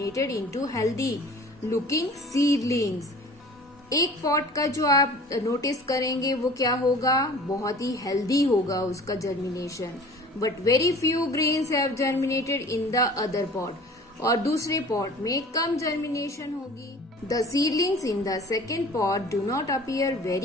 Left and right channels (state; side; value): normal; both; correlation 0.45